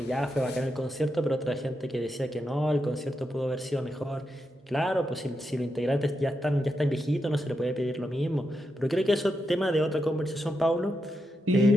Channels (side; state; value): both; normal; correlation 0.85